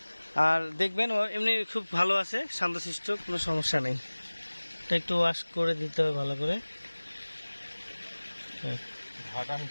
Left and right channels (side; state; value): both; inverted; correlation -1.00